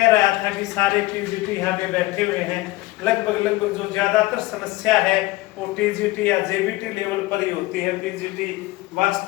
रहा था कि सारे टीजीटी यहाँ पे बैठे हुए हैं, लगभग जो ज्यादातर समस्या है वो टीजीटी या जेबीटी लेवल पर ही होती है। टीजीटी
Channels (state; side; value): quieter; right; 19.4 dB